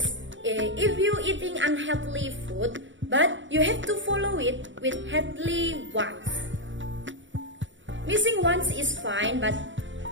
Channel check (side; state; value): left; late; 0.55 ms